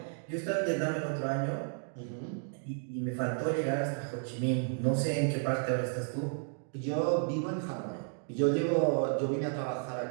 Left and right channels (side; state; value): left; silent; 56 dB below the other